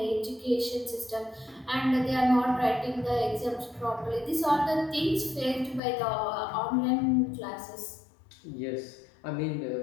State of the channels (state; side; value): drops out; right; at 5.8 s